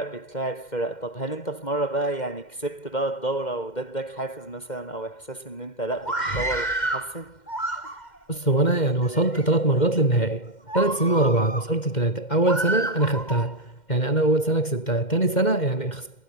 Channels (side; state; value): right; late; 2.1 ms